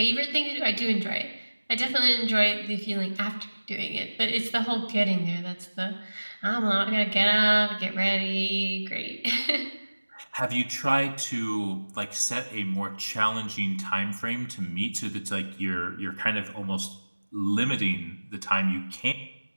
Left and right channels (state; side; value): inverted; both; correlation -1.00